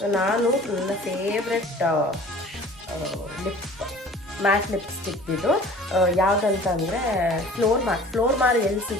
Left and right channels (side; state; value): both; normal; correlation 0.46